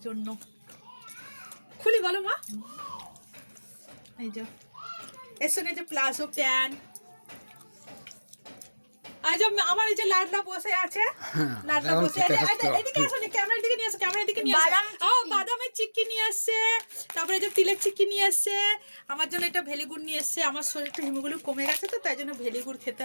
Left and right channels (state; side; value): inverted; both; correlation -1.00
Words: জন্য। খুলি বলো মা। এই যে এর সঙ্গে যে প্লাজো প্যান্ট, আজ আমার এই যে লাডলা বসে আছে, লাডলা বসে আছে। এদিকে আসো, ক্যামেরার দিকে নিয়ে আসো, ক্যামেরার দিকে নিয়ে আসো। বাদামের চিক্কি নিয়ে আসছে, তারপরে যে তিলের চিক্কি নিয়ে আসছে। আমার জন্য এটা ভেলিগুড় নিয়ে এসছে, আমার শরীরটা হিমোগুলো কমে গেছে তো, তাই জন্য ভেলিগুড় খেতে